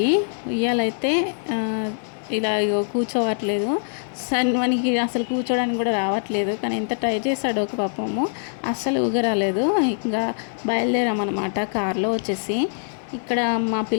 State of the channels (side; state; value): right; silent; 57 dB below the other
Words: ఉయ్యాలైతే ఇలా కూర్చోవట్లేదు. మనకి అసలు కూర్చోడానికి కూడా రావట్లేదు. కానీ ఎంత ట్రై చేశాడో ఒక పాపము, అస్సలు ఊగరాలేదు. ఇంకా బయలుదేరామన్నమాట కార్లో వచ్చేసి. ఇక్కడ మా